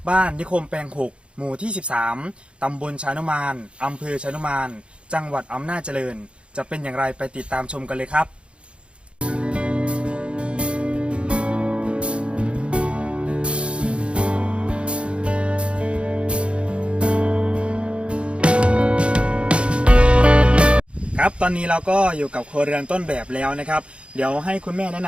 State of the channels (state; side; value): late; left; 0.058 ms